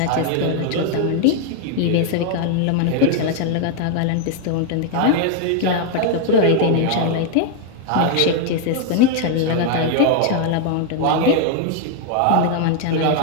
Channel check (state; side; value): different; both; correlation 0.00